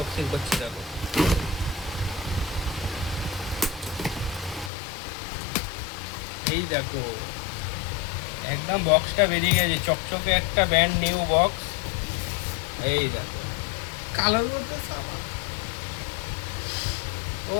করছি। দেখো, এই দেখো একদম বক্সটা বেরিয়ে গেছে, চকচকে একটা ব্যান্ড নিউ বক্স। এই দেখো, কালোর মধ্যে সাদা।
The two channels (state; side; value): drops out; right; at 4.7 s